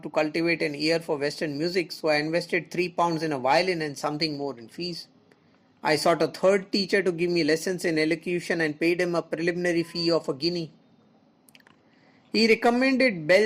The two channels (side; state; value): both; identical; correlation 1.00